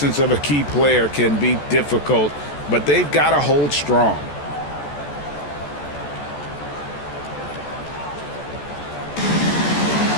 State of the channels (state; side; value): late; right; 14 ms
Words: of a key player can be difficult, but they've got to hold strong.